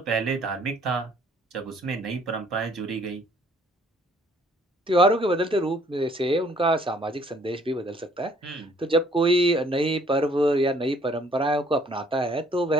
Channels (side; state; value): both; normal; correlation 0.61